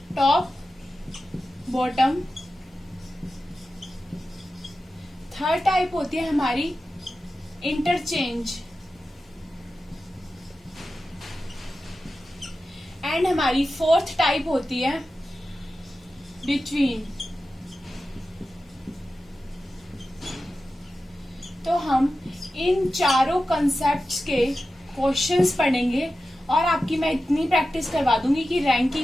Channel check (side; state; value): both; normal; correlation 0.93